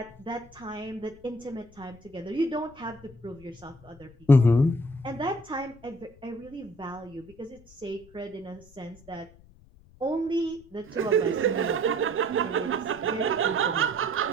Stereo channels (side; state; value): left; noise; rumble, 24 dB below the sound